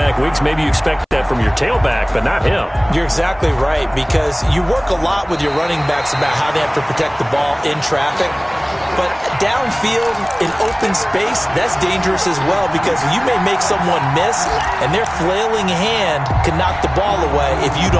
weeks, maybe you expect that that from your tailback, but not him. You're exactly right, because you work a lot with your running backs about how they have to protect the ball in traffic. But downfield, in open space, that's dangerous as well, because you may make someone miss, and their flailing hand can knock the ball away if you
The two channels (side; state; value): both; identical; correlation 1.00